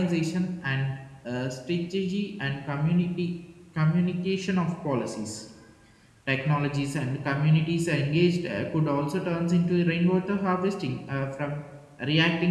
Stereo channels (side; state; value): both; identical; correlation 1.00